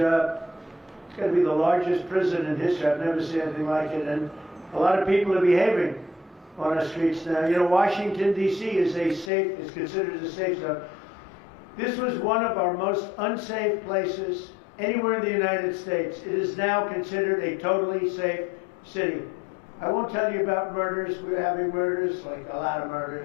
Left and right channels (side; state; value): right; drops out; at 9.3 s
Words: It's going to be the largest prison in history. I've never seen anything like it. And a lot of people are behaving on our streets now. You know, Washington, D.C. is considered a safe zone. This was one of our most unsafe places anywhere in the United States. It is now considered a totally safe city. I won't tell you about murders. We're having murders, like a lot of